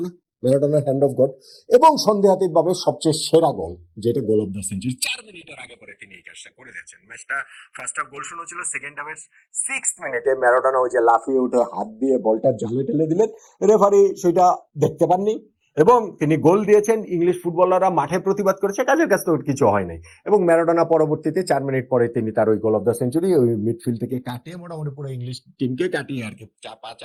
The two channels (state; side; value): identical; both; correlation 1.00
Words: ম্যারাডোনার হ্যান্ড অফ গড, এবং সন্দেহাতীতভাবে সবচেয়ে সেরা গোল যেটা গোল অফ দ্য সেঞ্চুরি, 4 মিনিটের আগে পরে তিনি এই কাজটা করে দিয়েছেন। ম্যাচটা ফার্স্ট হাফ গোল শূন্য ছিল, সেকেন্ড হাফের 6th মিনিটে ম্যারাডোনা ওই যে লাফিয়ে উঠে হাত দিয়ে বলটা জালে ঠেলে দিলেন, রেফারি সেটা দেখতে পাননি, এবং তিনি গোল দিয়েছেন। ইংলিশ ফুটবলাররা মাঠে প্রতিবাদ করেছে, কাজের কাছে তো কিছু হয় নাই, এবং ম্যারাডোনা পরবর্তীতে 4 মিনিট পরে তিনি তার ওই গোল অফ দ্য সেঞ্চুরি ওই মিডফিল্ড থেকে কাটিয়ে, মোটামুটি পুরো ইংলিশ টিমকে কাটিয়ে আর কি,